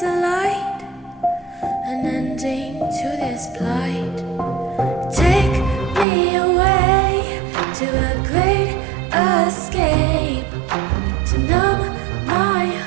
an ending to this plight. Take me away to a great escape, to numb my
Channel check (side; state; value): left; drops out; at 6.1 s